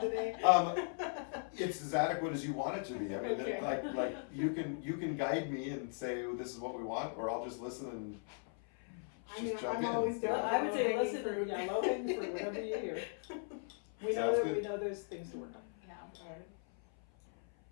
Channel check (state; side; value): silent; right; 52 dB below the other